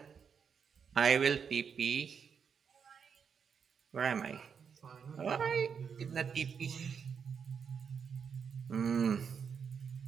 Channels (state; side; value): quieter; left; 6.7 dB